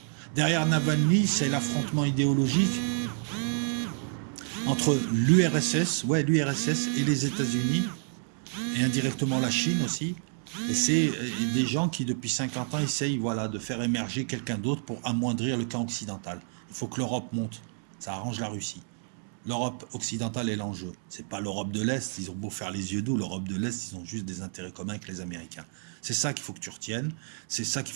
Derrière Navalny, c'est l'affrontement idéologique entre l'URSS, et les États-Unis, et indirectement la Chine aussi. Et c'est des gens qui, depuis 50 ans, essayent voilà, de faire émerger quelqu'un d'autre pour amoindrir le camp occidental. Il faut que l'Europe monte. Ça arrange la Russie. L'Europe occidentale est l'enjeu. C'est pas l'Europe de l'Est. Ils ont beau faire les yeux doux, l'Europe de l'Est, ils ont juste des intérêts communs avec les Américains. C'est ça qu'il faut que tu retiennes. C'est ça qu'il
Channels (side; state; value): left; silent; digital silence